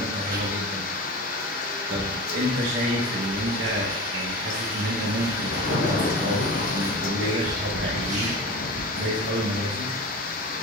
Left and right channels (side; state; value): both; normal; correlation 0.31